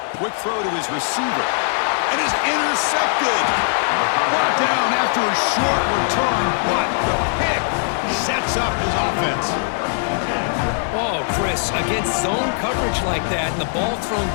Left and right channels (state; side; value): silent; right; digital silence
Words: Quick throw to his receiver. And he's intercepted. Brought down after a short return, but the pick sets up his offense. Oh, Oh, Chris, against zone coverage like that and the ball thrown